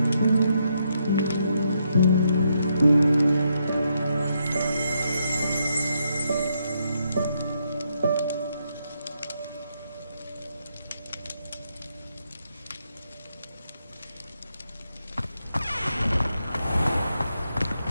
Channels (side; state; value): both; inverted; correlation -0.78